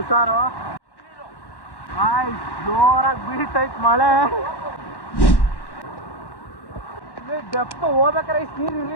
ಗಾಯ್ಸ್, ಜೋರಾಗಿ ಬೀಳ್ತೈತ್ ಮಳೆ. ಡೆಪ್ತ್ ಹೋಗ್ಬೇಕಾರೆ ಇಷ್ಟು ನೀರು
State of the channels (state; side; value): late; right; 1.1 ms